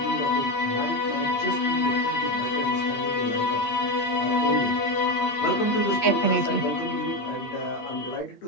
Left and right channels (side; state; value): right; late; 8.6 ms